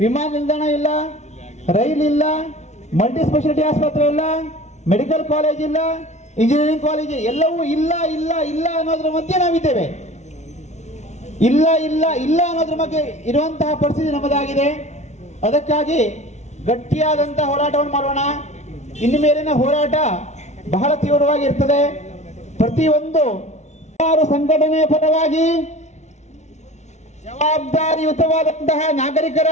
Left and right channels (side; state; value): right; late; 0.33 ms